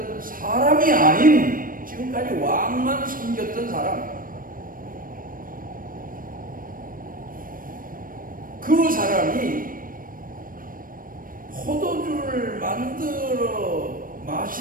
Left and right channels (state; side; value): late; left; 0.41 ms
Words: 사람이 아닌 지금까지 왕만 섬겼던 사람, 그 사람이 포도주를 만들어